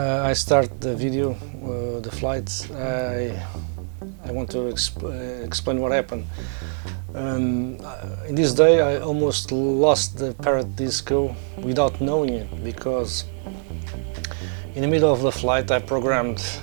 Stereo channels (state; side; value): silent; left; 62 dB below the other